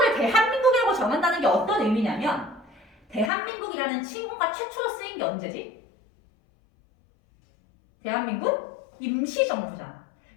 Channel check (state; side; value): drops out; right; at 3.3 s